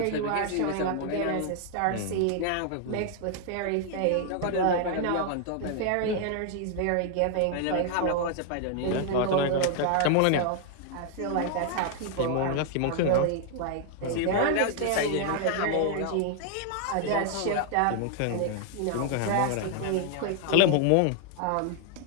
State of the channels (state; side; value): different; both; correlation 0.00